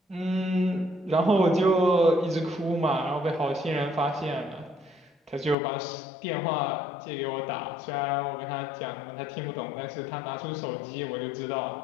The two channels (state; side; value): drops out; right; at 5.6 s